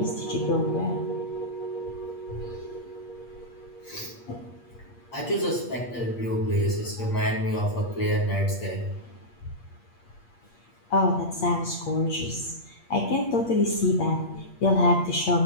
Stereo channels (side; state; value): right; late; 8.5 ms